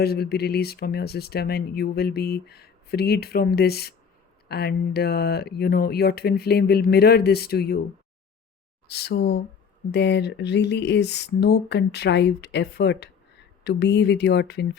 will be released from your system and you will be freed from this. And your twin flame will mirror this to you. So there really is no contrived effort to be with your twin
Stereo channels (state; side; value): quieter; right; 6.5 dB